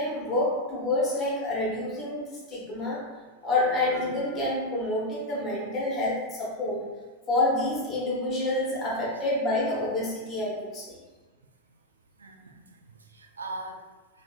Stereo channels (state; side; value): normal; both; correlation 0.02